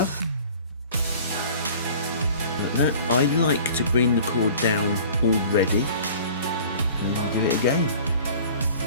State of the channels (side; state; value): both; inverted; correlation -0.46